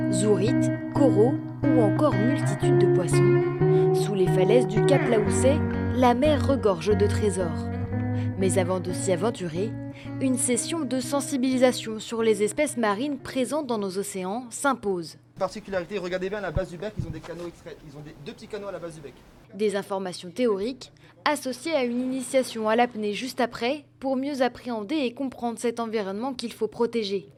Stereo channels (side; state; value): both; identical; correlation 1.00